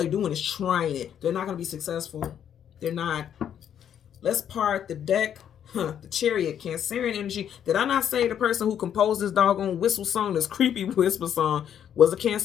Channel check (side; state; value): right; quieter; 9.3 dB